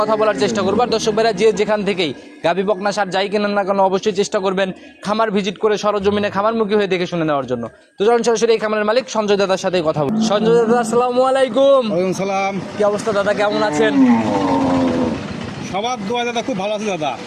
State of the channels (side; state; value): both; identical; correlation 1.00